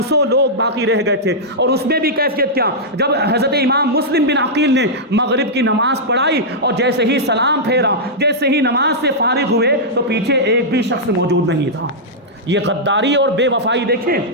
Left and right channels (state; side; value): normal; both; correlation -0.09